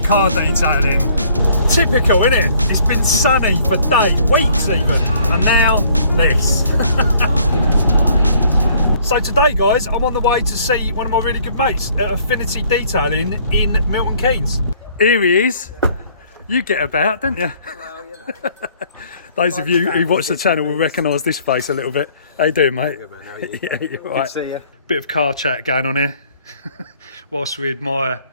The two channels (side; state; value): both; inverted; correlation -0.60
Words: detailing. Typical, isn't it? It's been sunny for days, weeks even, and now this. So today, guys, I'm on the way to see one of my really good mates at Affinity Detailing in Milton Keynes. Here he is. You get about, don't you? Well, you know. Those of you who watch the channel will recognise this face a little bit. How you doing, mate? Good man, how are you? Yeah, you're Good right. to see you. Bit of car chat going on here, whilst we admire